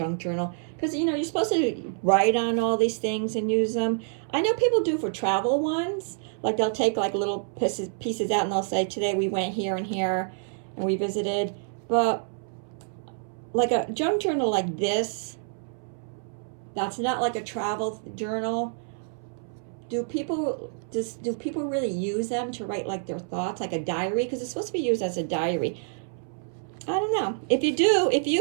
journal, because you know you're supposed to write on all these things and use them. I know people do for travel ones, like they'll take like little pieces out and they'll say today we went here and here and we visited. But like a junk journal like this, that's not like a travel journal. Do people really use them to write like their thoughts, like a diary? Because it's supposed to be used as a diary. I don't know. If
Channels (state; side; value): silent; left; 60 dB below the other